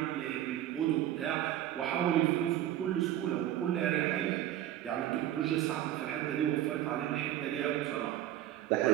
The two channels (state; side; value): quieter; left; 12.6 dB